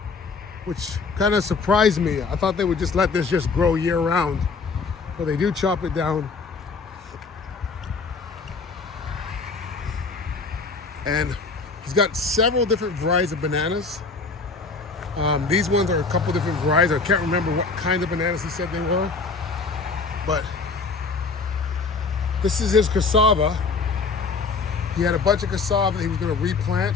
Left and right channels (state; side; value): quieter; right; 4.4 dB